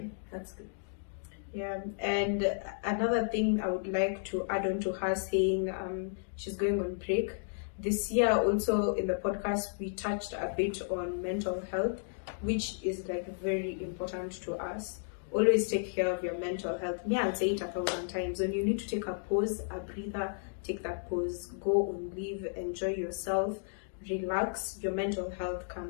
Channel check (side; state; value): right; silent; digital silence